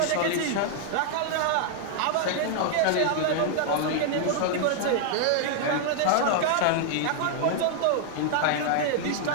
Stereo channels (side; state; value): both; different; correlation 0.00